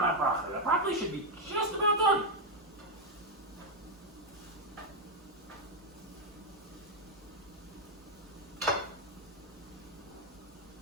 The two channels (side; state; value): both; normal; correlation 0.03